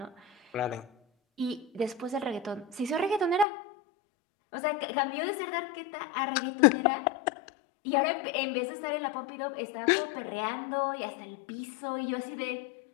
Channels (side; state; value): right; drops out; at 3.5 s